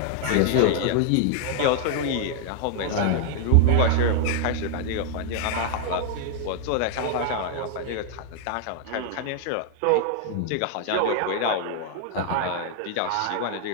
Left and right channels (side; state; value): both; different; correlation 0.00